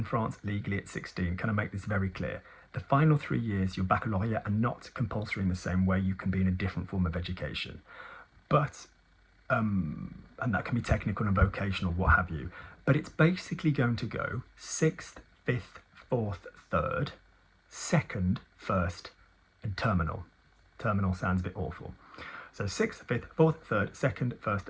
France legally at 16. Can I make this very clear? The final 3 years, your baccalaureate, are not compulsory in the same way. You can be in a different form of education. But, and that can be technical and vocational, what have you. But it's basically going to go 6th, 5th, 4th, 3rd, 2nd, 1st, and terminal. Terminal sounds a bit awful. So 6th, 5th, 4th, 3rd, 2nd,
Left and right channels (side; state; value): both; identical; correlation 1.00